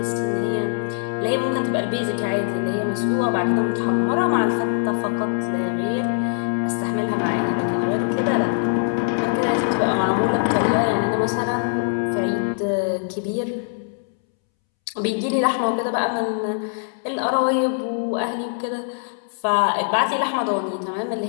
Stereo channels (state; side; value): silent; right; 64 dB below the other